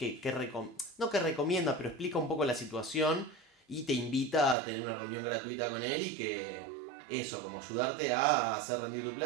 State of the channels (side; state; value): left; drops out; at 4.5 s